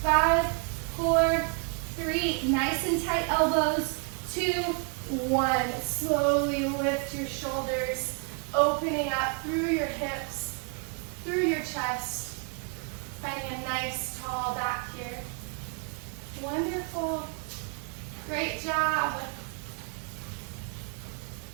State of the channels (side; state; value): left; quieter; 39.3 dB